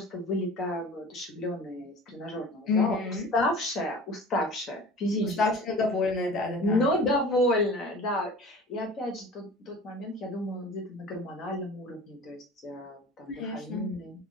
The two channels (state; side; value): normal; both; correlation 0.40